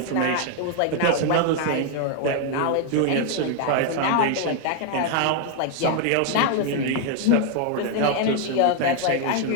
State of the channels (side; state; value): both; different; correlation 0.00